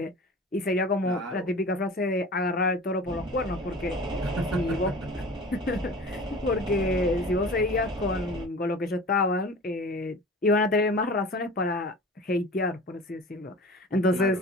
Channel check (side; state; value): both; normal; correlation 0.39